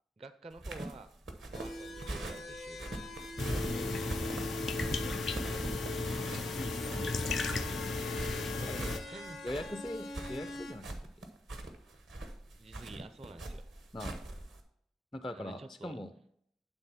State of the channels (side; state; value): both; normal; correlation 0.82